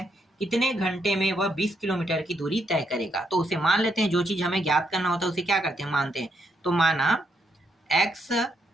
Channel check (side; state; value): both; normal; correlation 0.77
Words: कितने घंटे में वह 20 किलोमीटर की दूरी तय करेगा? तो उसे मान लेते हैं, जो चीज हमें ज्ञात करना होता है उसे क्या करते हैं? मानते हैं। तो माना x